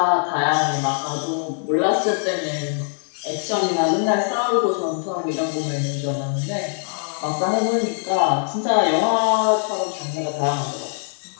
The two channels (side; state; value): right; silent; 60 dB below the other